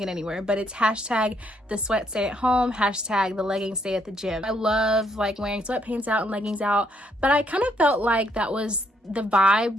it anywhere, but it's hashtag the sweat stay at home, hashtag the leggings stay at the gym. I love like wearing sweatpants out and leggings out, but I kind of felt like that was the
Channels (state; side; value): normal; both; correlation 0.72